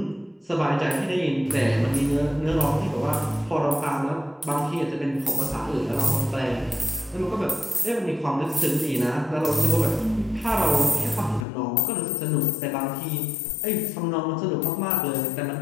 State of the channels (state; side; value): drops out; right; at 11.5 s